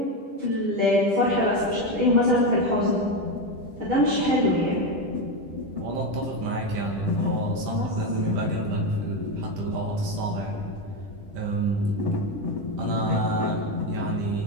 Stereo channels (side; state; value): left; late; 10 ms